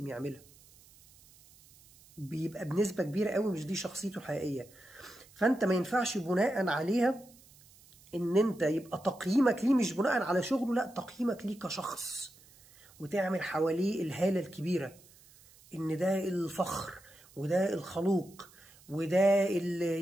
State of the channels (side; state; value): right; noise; hiss, 25 dB below the sound